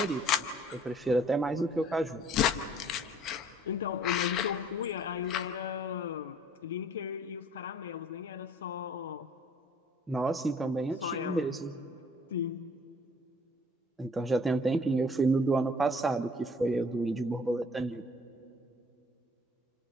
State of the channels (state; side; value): normal; both; correlation 0.55